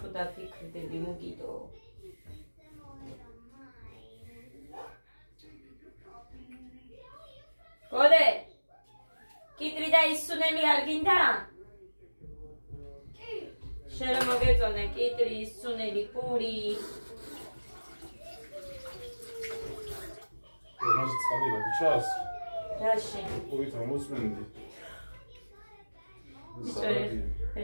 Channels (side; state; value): both; inverted; correlation -1.00